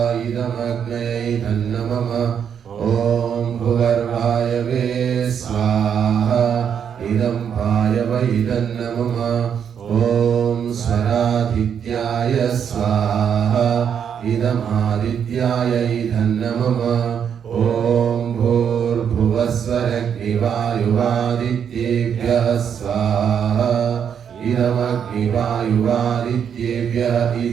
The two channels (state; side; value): quieter; left; 8.0 dB